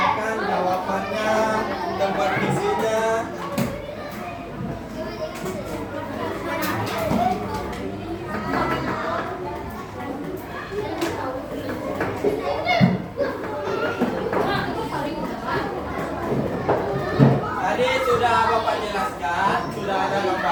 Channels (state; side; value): identical; both; correlation 1.00